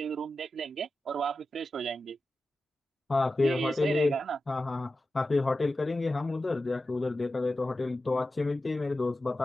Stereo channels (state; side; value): normal; both; correlation 0.93